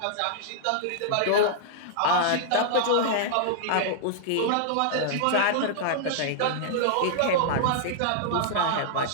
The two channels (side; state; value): both; different; correlation -0.01